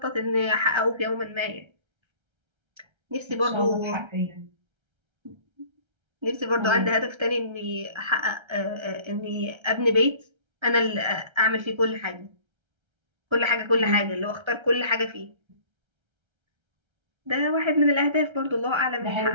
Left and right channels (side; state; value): left; late; 1.3 ms